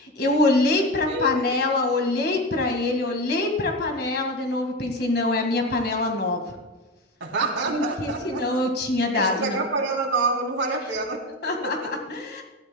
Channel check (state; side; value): normal; both; correlation 0.22